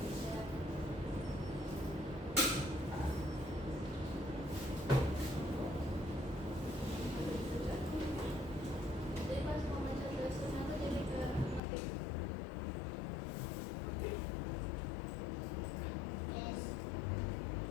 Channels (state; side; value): drops out; right; at 11.6 s